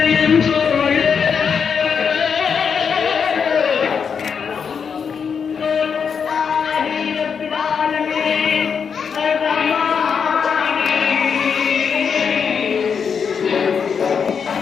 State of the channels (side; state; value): right; quieter; 6.5 dB